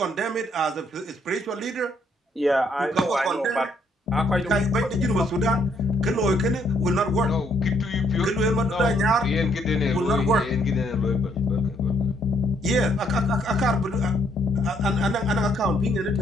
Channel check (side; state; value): both; normal; correlation 0.68